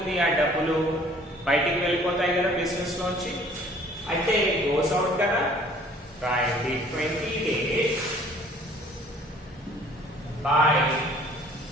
ఆ డబ్బులు బయటికి వెళ్ళిపోతాయి కదా బిజినెస్ లోంచి. అయితే గోస్ అవుట్ కదా. రాయండి 20 days బై.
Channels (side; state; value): both; normal; correlation 0.54